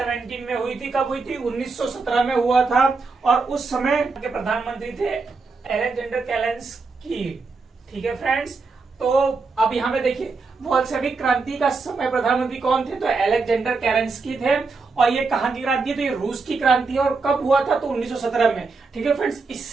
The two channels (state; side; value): quieter; left; 4.2 dB